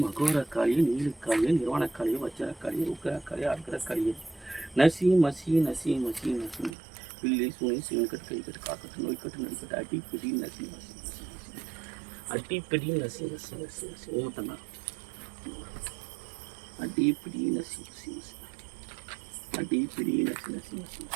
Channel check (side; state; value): left; drops out; at 6.8 s